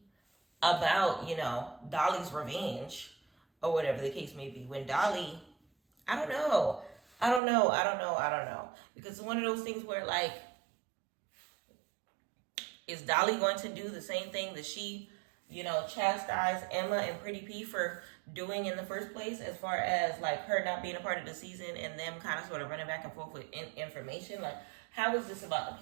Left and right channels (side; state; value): left; drops out; at 7.4 s